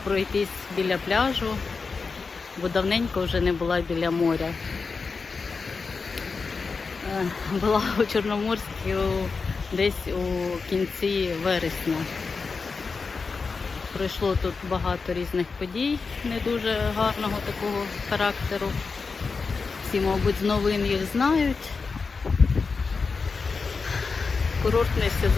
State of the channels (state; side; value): quieter; right; 4.7 dB